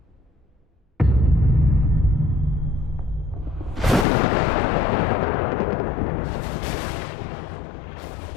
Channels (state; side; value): drops out; right; at 4.0 s